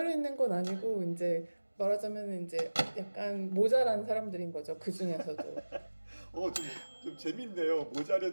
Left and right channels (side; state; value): both; inverted; correlation -1.00